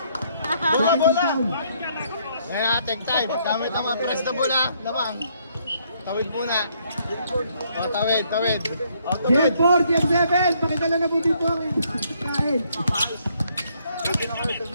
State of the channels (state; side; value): inverted; both; correlation -0.69